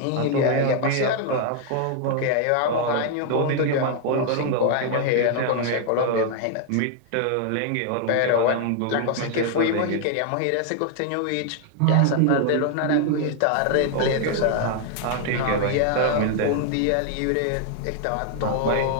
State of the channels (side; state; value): both; different; correlation 0.00